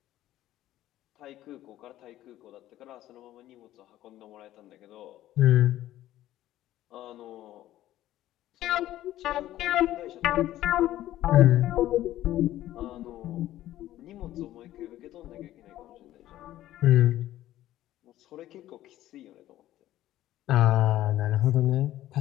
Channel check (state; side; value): quieter; right; 14.0 dB